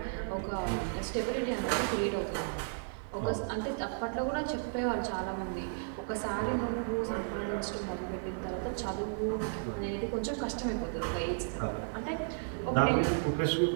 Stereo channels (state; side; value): silent; left; digital silence